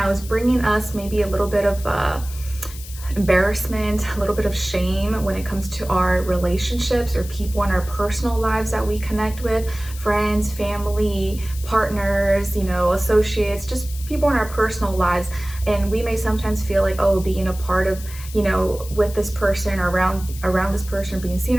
is bringing us maybe a little bit of embarrassment, a little bit of shame when it comes to our relationships or people in our personal lives that we connect with, friends, family, partners, associates, just people in our personal lives. And we may sometimes feel like, oh, being a part of, with this person or around this person, or being seen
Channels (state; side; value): noise; left; hiss, 15 dB below the sound